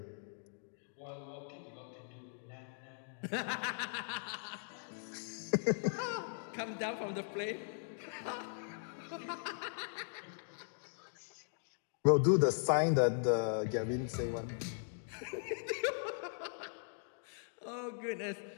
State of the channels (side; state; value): right; silent; digital silence